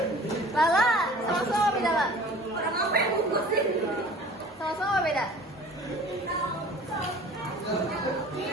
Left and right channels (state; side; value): normal; both; correlation 0.46